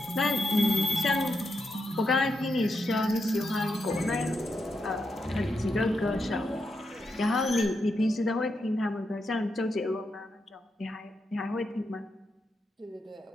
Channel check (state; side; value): normal; both; correlation 0.84